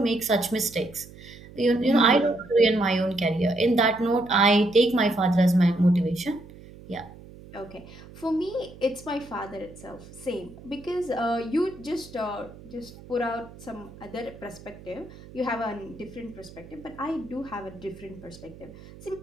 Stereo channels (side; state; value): right; noise; hum, 18 dB below the sound